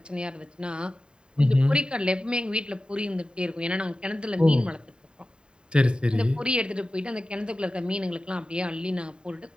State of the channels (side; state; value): left; late; 0.050 ms